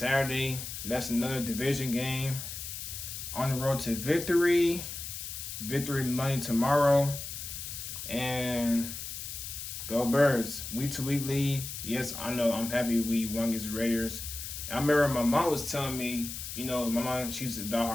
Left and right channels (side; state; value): left; noise; hiss, 7 dB below the sound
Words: That's another division game. On the road to victory. Victory Monday tomorrow. And go Birds. Week-to-week lead. Yes, I know. I'm happy we won against the Raiders. I remember my mom was telling me, you know, my mom, she's a